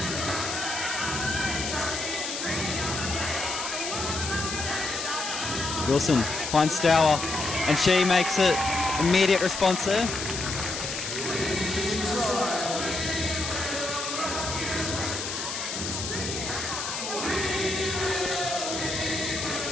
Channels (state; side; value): noise; left; hiss, 5 dB below the sound